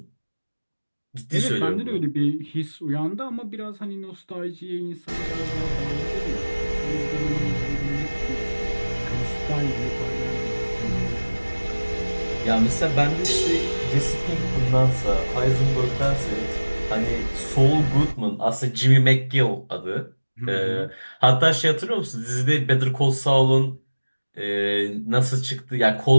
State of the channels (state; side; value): inverted; both; correlation -1.00